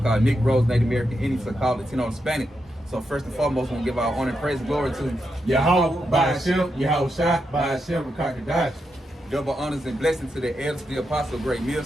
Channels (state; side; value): normal; both; correlation 0.85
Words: Negroes, Native American Indians, so-called Latino, and Hispanic. So first and foremost, we want to give our honor and praise and glory to Yahweh, by Hashem, Yahweh Shah, by Hashem, Rakakadash. Double honors and blessings to the elders, the apostle, great